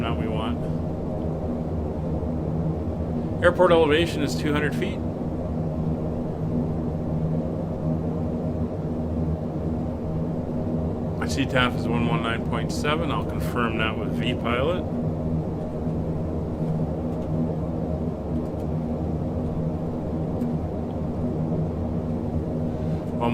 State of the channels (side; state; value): both; identical; correlation 1.00